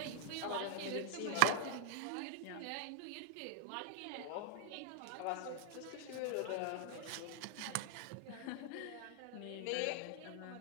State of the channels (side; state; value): both; different; correlation 0.00